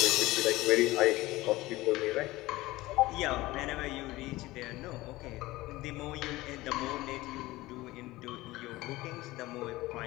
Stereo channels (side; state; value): right; quieter; 18.9 dB